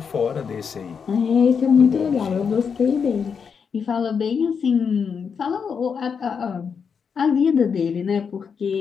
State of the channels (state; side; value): quieter; right; 6.3 dB